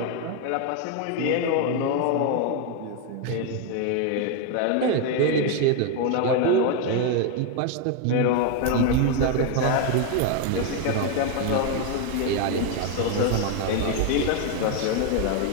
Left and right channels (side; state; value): both; different; correlation 0.01